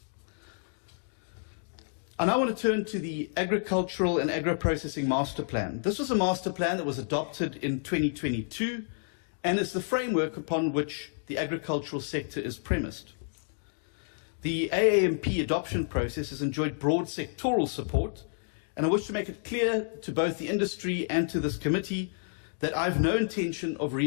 I now want to turn to the Agricultural and Agro-Processing Master Plan. This was a master plan that was adopted in 2022 and is the framework upon which the agricultural sector is premised. The AAMP adoption process has enjoyed broad sectoral support, and I wish to make it clear to both the industry and to this committee that I have no intention of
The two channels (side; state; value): right; silent; digital silence